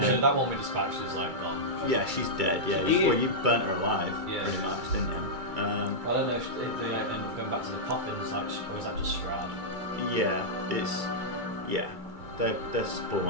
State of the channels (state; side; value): late; left; 2.3 ms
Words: So that one we dispatched is like gone. Yeah, she's dead. Yeah, you burnt her alive, Yeah. pretty much, didn't you? I don't know if they end up going back to the coffins, like, or is that just Strahd? They're